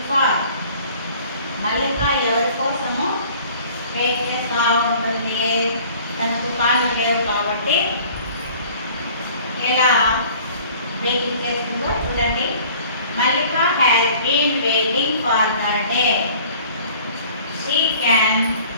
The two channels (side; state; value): both; inverted; correlation -0.50